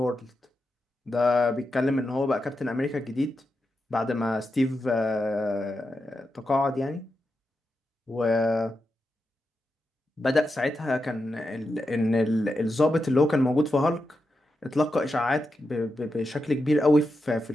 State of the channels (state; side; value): normal; both; correlation 0.88